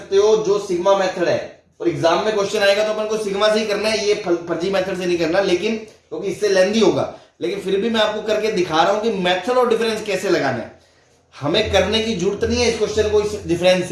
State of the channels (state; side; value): identical; both; correlation 1.00